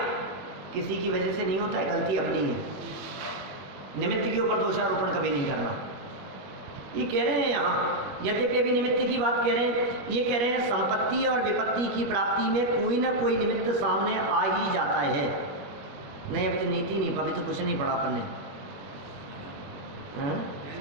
किसी की वजह से नहीं होता है, गलती अपनी है। निमित्त के ऊपर दोषारोपण कभी नहीं करना। ये कह रहे हैं यहाँ, यद्यपि अभी निमित्त की बात कह रहे हैं, ये कह रहे हैं संपत्ति और विपत्ति की प्राप्ति में कोई ना कोई निमित्त सामने आ ही जाता है। नहीं, अभी तो नीति नहीं, अभी तो कुछ नहीं पढ़ा अपन ने।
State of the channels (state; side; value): late; left; 21 ms